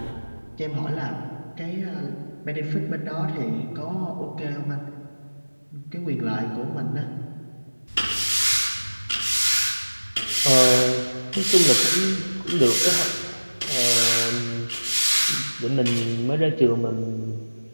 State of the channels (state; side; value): inverted; both; correlation -1.00